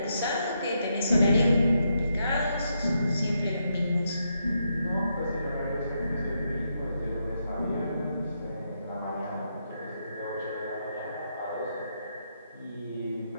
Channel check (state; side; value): inverted; both; correlation -0.81